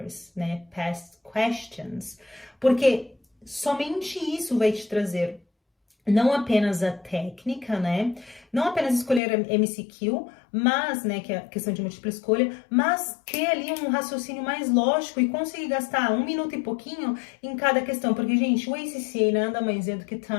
past questions, porque somente isso vai te trazer não apenas a técnica, não apenas escolher a MCQ, mas, que é a questão de múltipla escolha, mas ter ali um raciocínio mais lógico e conseguir gastar 1 minuto e pouquinho em cada questão, porque, gente, o ACCA nada mais é do que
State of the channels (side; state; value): right; drops out; at 9.2 s